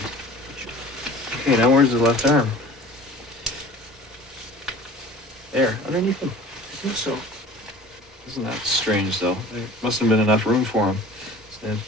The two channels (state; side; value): normal; both; correlation 0.44